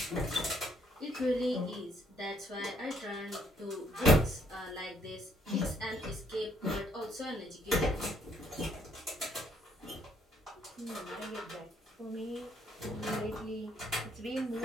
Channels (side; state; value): both; normal; correlation 0.68